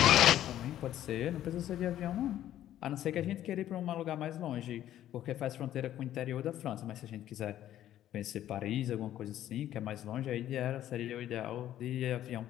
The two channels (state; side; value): quieter; right; 12.2 dB